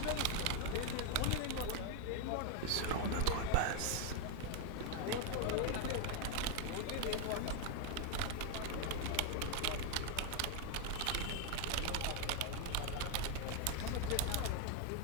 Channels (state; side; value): different; both; correlation 0.01